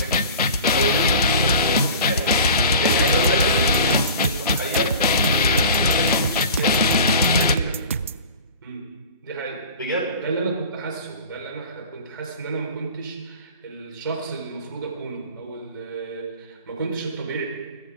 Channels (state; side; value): inverted; both; correlation -0.39